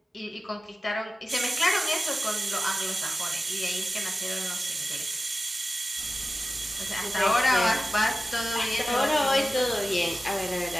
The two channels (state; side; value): normal; both; correlation 0.94